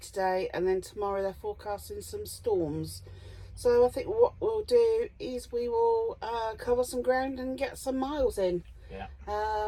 And then tomorrow they're forecasting some storms. So I think what we'll do is we will cover some ground and get some miles in. Yeah.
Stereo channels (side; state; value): both; identical; correlation 1.00